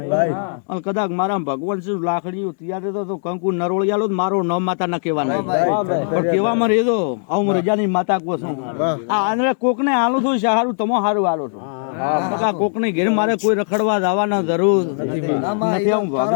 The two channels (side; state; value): right; silent; digital silence